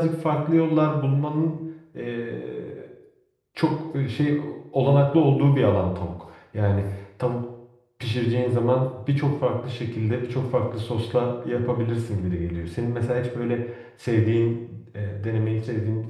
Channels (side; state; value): both; identical; correlation 1.00